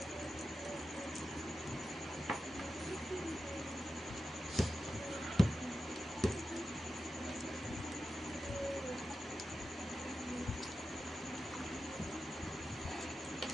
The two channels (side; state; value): both; normal; correlation 0.92